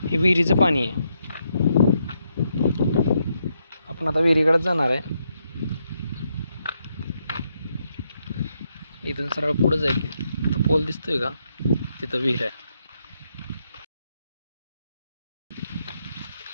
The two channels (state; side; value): inverted; both; correlation -0.79